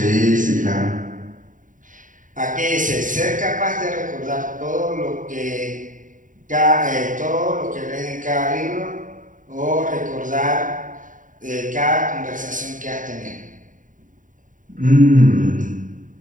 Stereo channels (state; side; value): late; left; 0.38 ms